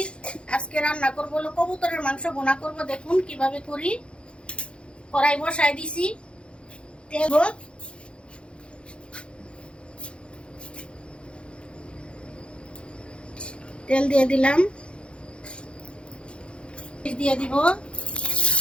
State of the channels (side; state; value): right; late; 0.057 ms